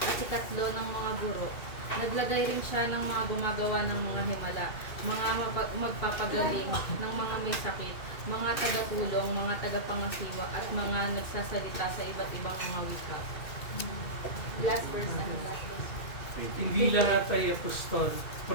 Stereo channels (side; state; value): right; late; 2.4 ms